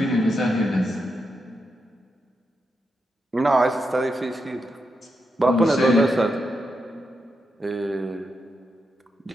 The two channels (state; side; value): normal; both; correlation 0.85